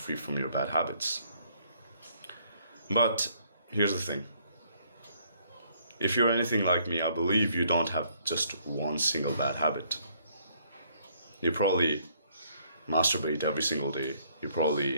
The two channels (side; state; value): both; inverted; correlation -0.66